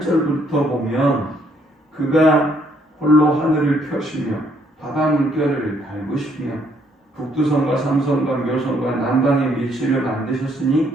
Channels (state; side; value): normal; both; correlation 0.68